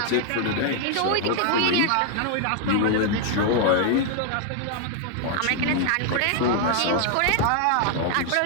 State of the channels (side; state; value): both; different; correlation 0.00